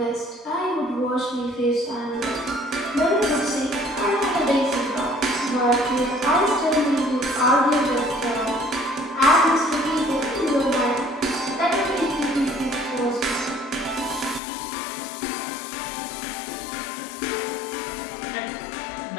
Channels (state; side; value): drops out; right; at 14.4 s